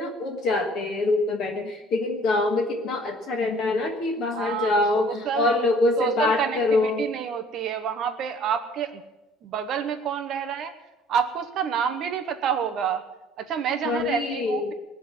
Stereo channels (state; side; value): normal; both; correlation 0.53